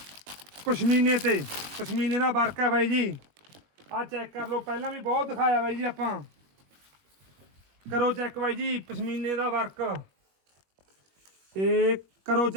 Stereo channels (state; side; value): late; left; 21 ms